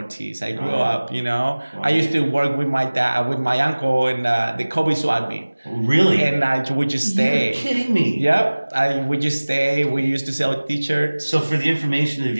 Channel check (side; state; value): both; inverted; correlation -1.00